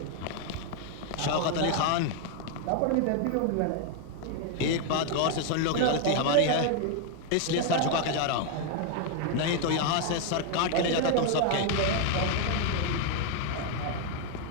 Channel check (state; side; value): different; both; correlation 0.00